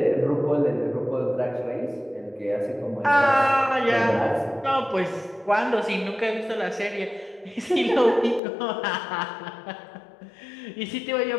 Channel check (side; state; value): right; drops out; at 8.4 s